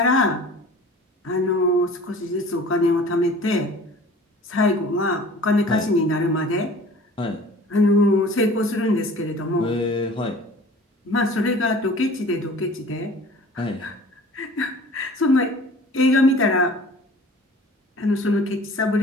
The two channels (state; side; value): normal; both; correlation 0.45